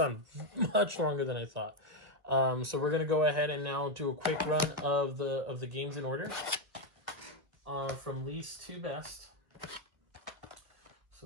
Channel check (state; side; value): late; left; 1.3 ms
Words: much longer than I thought. So we're going to go ahead and now do a quick run of the games in order from least to best.